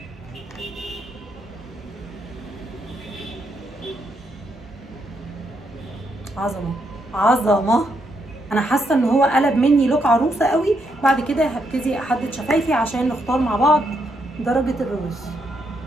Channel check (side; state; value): both; normal; correlation 0.78